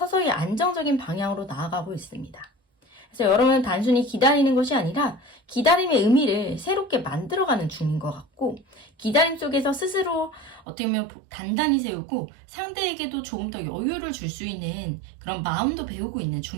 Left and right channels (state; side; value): drops out; left; at 10.6 s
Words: 안정적인 방향으로 나아가고 있습니다. 그래서 여러분은 단순히 기다리는 것이 아니라 기다림의 의미를 새롭게 만들어가는 중인 것 같고 기다림 속에서 스스로 어떻게 보면 단단히 세우고 상대에게도 조금 더 여유를 줄 수 있는 그런 마음도 배우고 있는